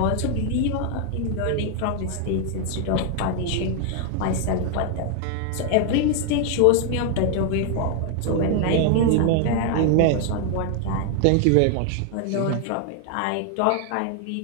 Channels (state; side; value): different; both; correlation 0.00